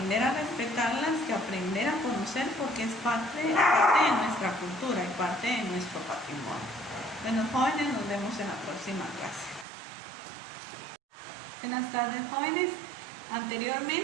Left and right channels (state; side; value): drops out; left; at 9.7 s